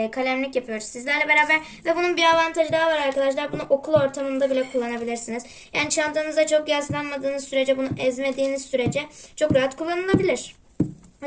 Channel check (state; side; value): identical; both; correlation 1.00